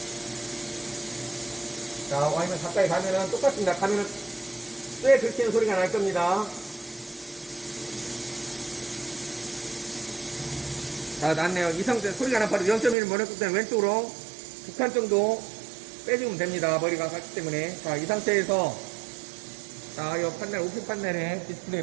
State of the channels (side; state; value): left; drops out; at 13.0 s